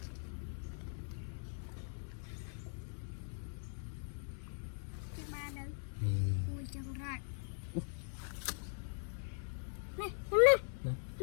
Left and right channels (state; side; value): silent; right; 51 dB below the other